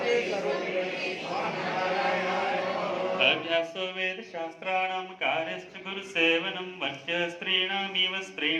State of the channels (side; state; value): both; identical; correlation 1.00